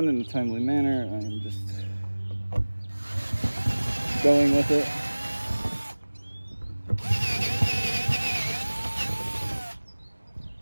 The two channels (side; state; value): both; inverted; correlation -1.00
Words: in a timely manner, I am just going with it.